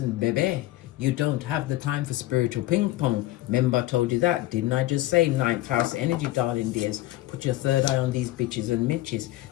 baby, you don't have the time for spiritual ping pong. Remember I told you that, didn't I just say? 9th house energy, darling dears. Put your third eye on these bitches and mitches.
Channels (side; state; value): right; quieter; 16.8 dB